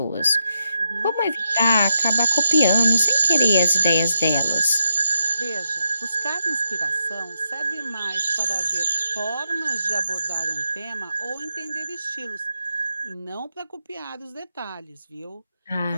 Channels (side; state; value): both; inverted; correlation -0.83